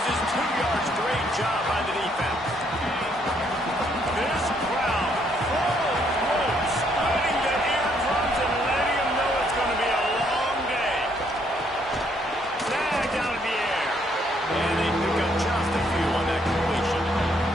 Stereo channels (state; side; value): normal; both; correlation 0.70